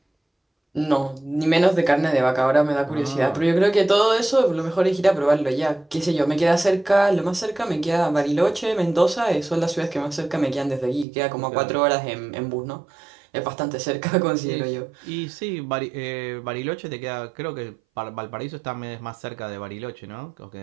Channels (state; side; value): drops out; left; at 11.1 s